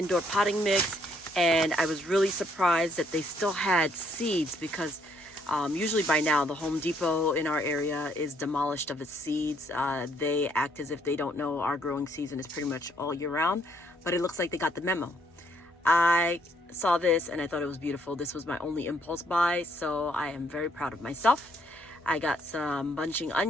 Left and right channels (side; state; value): both; normal; correlation 0.69